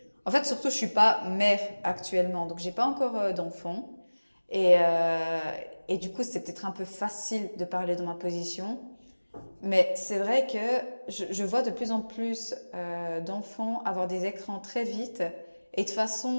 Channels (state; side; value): inverted; both; correlation -1.00